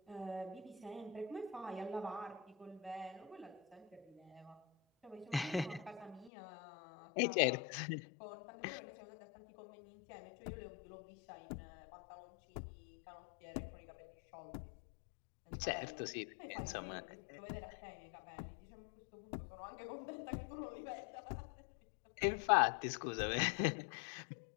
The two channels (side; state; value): right; drops out; at 6.3 s